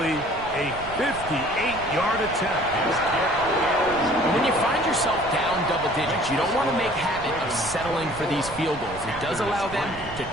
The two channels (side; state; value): right; noise; rumble, 15 dB below the sound